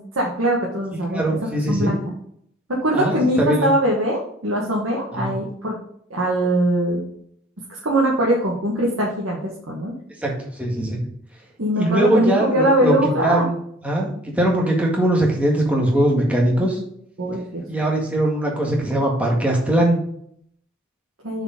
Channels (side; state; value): both; normal; correlation 0.52